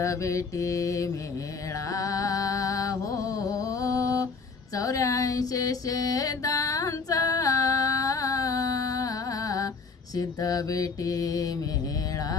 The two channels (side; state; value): right; quieter; 4.7 dB